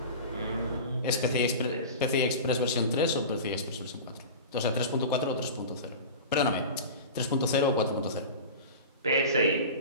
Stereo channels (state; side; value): inverted; both; correlation -0.32